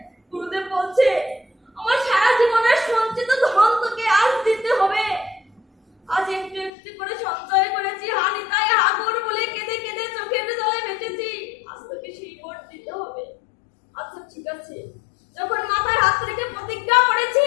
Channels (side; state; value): right; drops out; at 6.7 s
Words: গুরুদেব বলছে, আমার সারা জীবনের সঞ্চিত ধন তোকে আজ দিতে হবে। আজ একটু একটু করে সঞ্চয় করেছি, হা নিতাই, হা গৌর বলে কেঁদে কেঁদে চোখের জলে ভেসেছি, আজ তোকে সেই বর দিতে হবে। আচ্ছা ঠিক আছে, যখন মাথায় হাত রেখে প্রতিজ্ঞা করেছি,